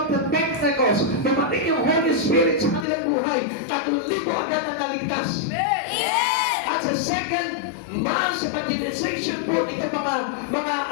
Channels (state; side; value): drops out; right; at 2.9 s